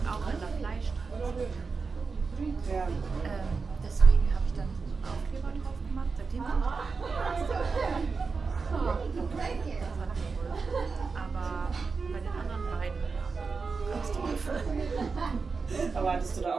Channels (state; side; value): quieter; left; 4.7 dB